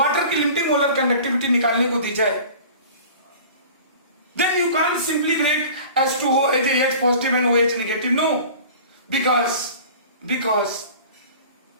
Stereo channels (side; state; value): both; inverted; correlation -0.42